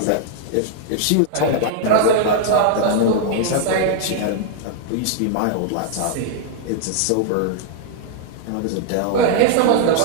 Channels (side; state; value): both; different; correlation -0.01